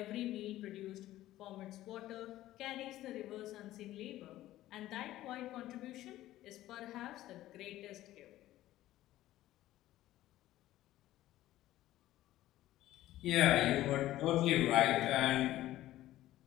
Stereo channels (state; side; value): quieter; right; 14.8 dB